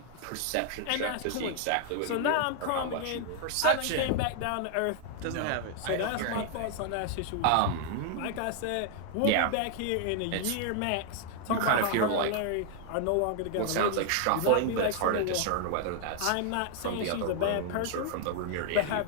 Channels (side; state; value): both; different; correlation 0.00